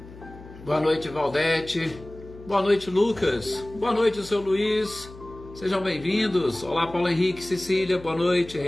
Boa noite, Valdete, boa noite, Lucas, boa noite, seu Luiz, sejam bem-vindos. Olá, Paulo Henrique, Cecília, boa noite,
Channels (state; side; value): noise; left; hum, 18 dB below the sound